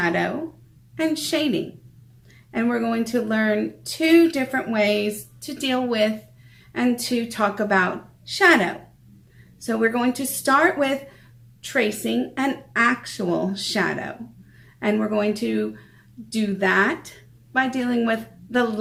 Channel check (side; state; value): both; identical; correlation 1.00